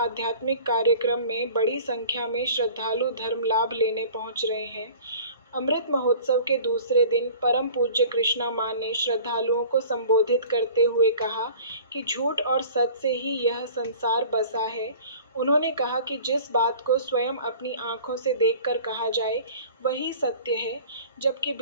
कार्यक्रम में बड़ी संख्या में श्रद्धालु धर्म लाभ लेने पहुंच रहे हैं। अमृत महोत्सव के दूसरे दिन परम पूज्य कृष्णा मां ने श्रद्धालुओं को संबोधित करते हुए कहा कि झूठ और सच से ही यह संसार बसा है। उन्होंने कहा कि जिस बात को स्वयं अपनी आंखों से देखकर कहा जाए वही सत्य है, जबकि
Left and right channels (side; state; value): both; inverted; correlation -0.45